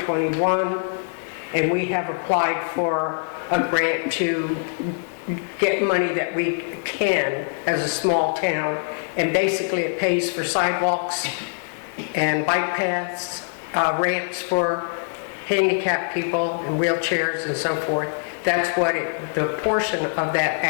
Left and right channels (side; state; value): right; silent; digital silence